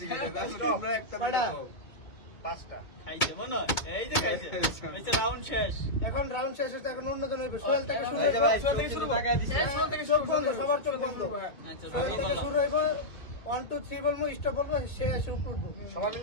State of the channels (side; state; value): right; late; 2.2 ms